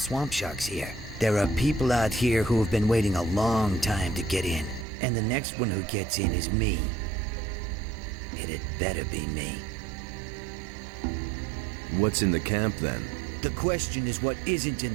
sharks here. There are people out here who have been waiting a long time to get in. And the next one who gets in is me. It'd better be me. What's in the camp then? The question is what isn't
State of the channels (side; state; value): left; drops out; at 4.9 s